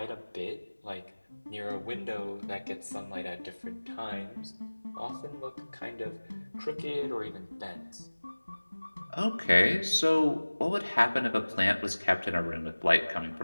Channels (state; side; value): inverted; both; correlation -1.00